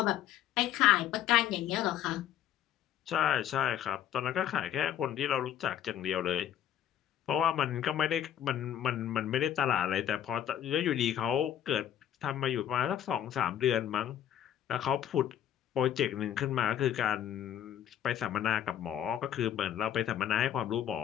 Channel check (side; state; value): right; quieter; 10.5 dB